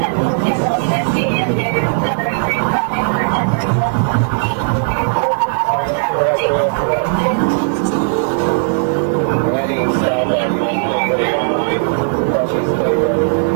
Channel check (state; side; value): silent; left; digital silence